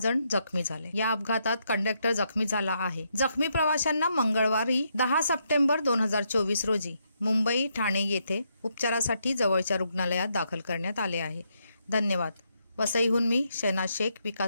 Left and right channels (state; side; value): inverted; both; correlation -0.78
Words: जखमी झाले। या अपघातात कंडक्टर जखमी झाला आहे। जखमी प्रवाशांना मंगळवारी 10 सप्टेंबर 2024 रोजी मुंबई ठाणे येथे उपचारासाठी जवळच्या रुग्णालयात दाखल करण्यात आले आहे। धन्यवाद। वसईहून मी शहनाज शेख,